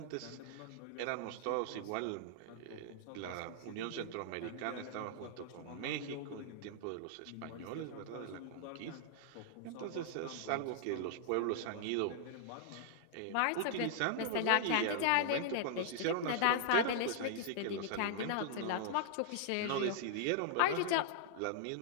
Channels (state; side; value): different; both; correlation -0.01